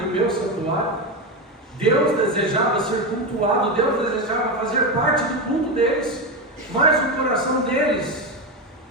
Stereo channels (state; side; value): normal; both; correlation 0.14